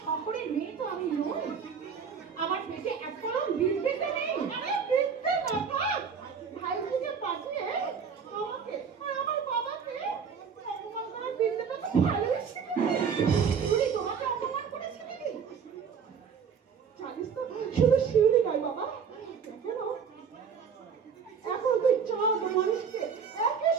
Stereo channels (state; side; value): quieter; left; 6.5 dB